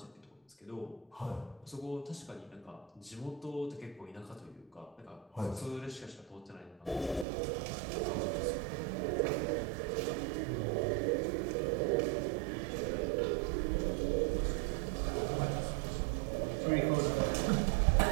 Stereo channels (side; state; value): left; drops out; at 7.2 s